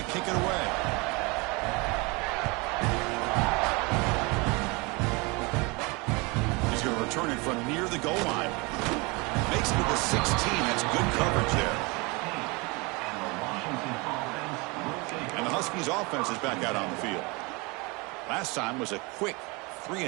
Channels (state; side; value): quieter; left; 27.1 dB